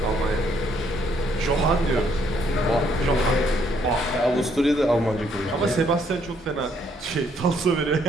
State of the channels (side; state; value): both; normal; correlation 0.69